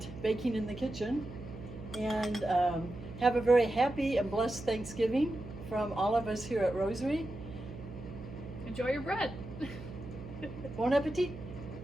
baking in the kitchen. And have a very happy and blessed Thanksgiving from all of us here at Rosary. Enjoy your bread. Bon appetit.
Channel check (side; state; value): right; noise; hum, 12 dB below the sound